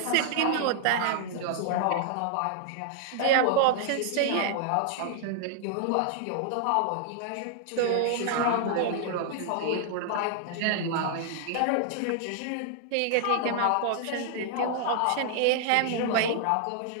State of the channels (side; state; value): both; different; correlation -0.01